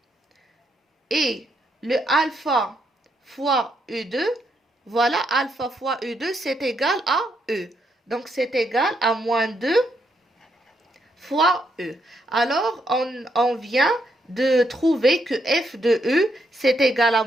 Et le alpha fois U2, voilà, alpha fois U2, c'est égal à E. Donc c'est égal à moins 2 fois E. Alors on vient de trouver que F de E, c'est égal à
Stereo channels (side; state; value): both; normal; correlation 0.77